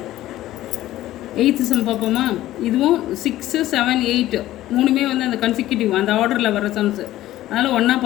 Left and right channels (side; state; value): right; quieter; 14.7 dB